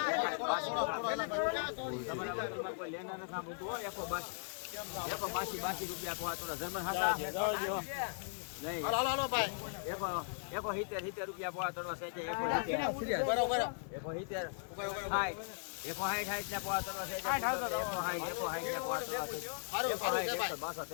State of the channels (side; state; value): right; silent; 52 dB below the other